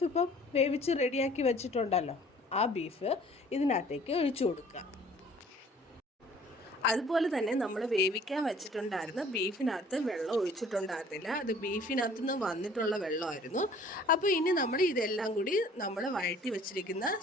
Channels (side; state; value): both; normal; correlation 0.53